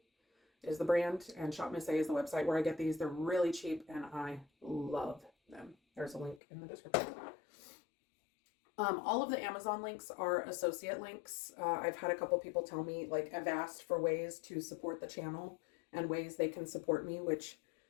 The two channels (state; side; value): drops out; right; at 6.4 s